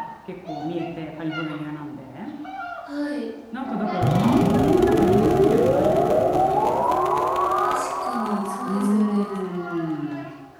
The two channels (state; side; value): identical; both; correlation 1.00